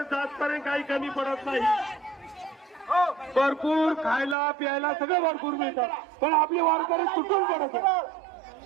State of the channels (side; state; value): left; drops out; at 4.4 s